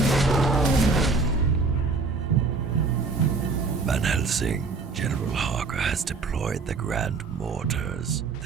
Van Helsing, General Harker has deployed the Grand Mortars.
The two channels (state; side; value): quieter; left; 4.2 dB